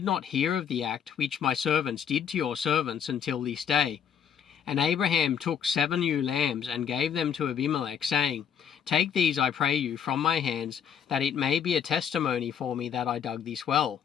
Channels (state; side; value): quieter; right; 8.2 dB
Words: not hear of the act which my servants did to your servants until this day." And Abraham took 7 ewe lambs and gave them to Abimelech, saying, "Take these, I pray you, from my hands, that it may be a testimony for me that I dug this well."